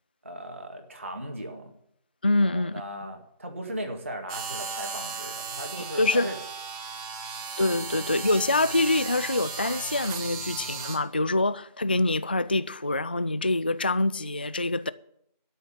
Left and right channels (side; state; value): both; inverted; correlation -0.68